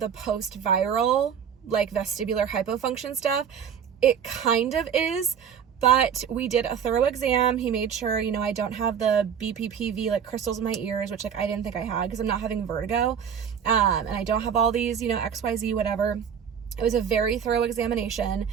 post-viral like vestibular hypofunction stuff, it kind of is, but we did a thorough exam. He made sure, I don't have the BPPV like crystals in my ears, which like I didn't think I had because I'm not having vertigo, and I don't have all these, XYZ, whatever. It was a very thorough examination,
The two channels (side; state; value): left; quieter; 7.7 dB